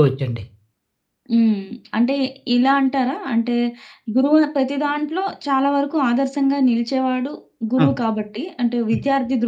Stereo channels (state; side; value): identical; both; correlation 1.00